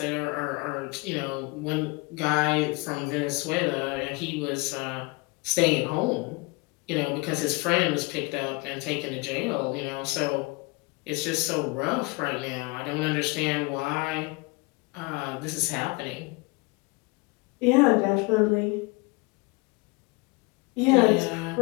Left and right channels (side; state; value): right; quieter; 26.0 dB